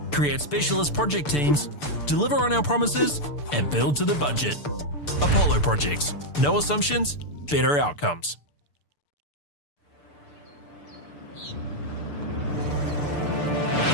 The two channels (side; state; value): right; late; 6.8 ms